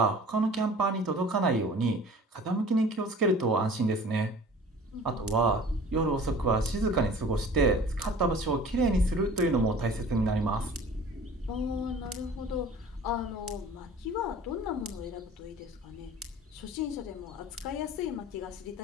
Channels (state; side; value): normal; both; correlation 0.45